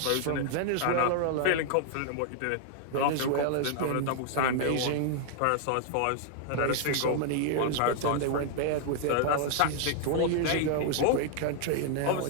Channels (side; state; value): both; different; correlation 0.00